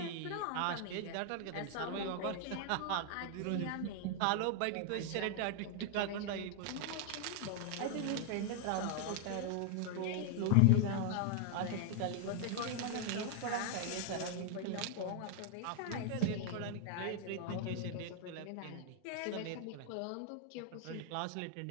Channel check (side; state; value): both; different; correlation 0.00